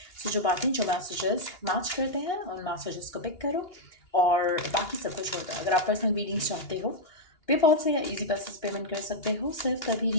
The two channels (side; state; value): right; late; 2.8 ms